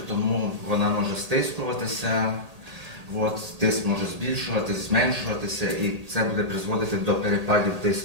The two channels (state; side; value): late; left; 1.8 ms